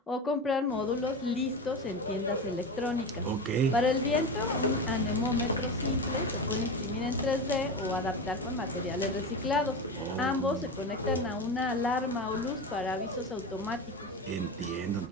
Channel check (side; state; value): both; normal; correlation 0.24